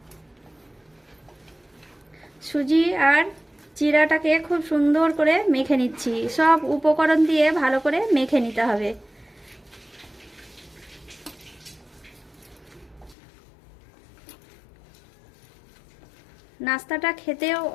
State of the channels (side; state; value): right; drops out; at 13.2 s